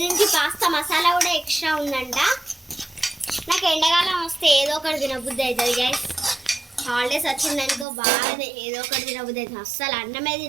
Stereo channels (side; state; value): left; drops out; at 7.9 s